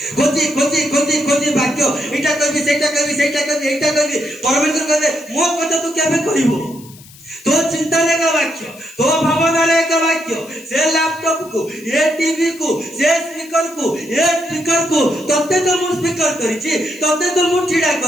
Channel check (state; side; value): noise; left; hiss, 22 dB below the sound